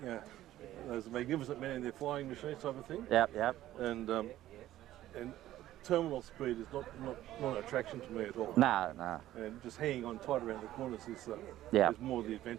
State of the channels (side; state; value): left; quieter; 13.9 dB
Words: there's magnificent men in their flying machines type of thing, Yep. and terminal speed is not an attraction to me at all. No. And just hanging on tight around the corners is Yeah. more the